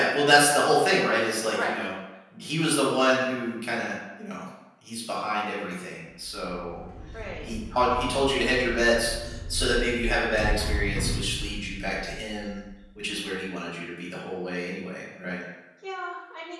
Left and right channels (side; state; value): both; identical; correlation 1.00